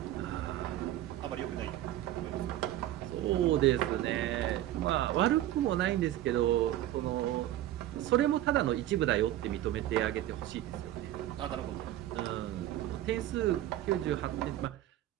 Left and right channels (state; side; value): quieter; left; 13.5 dB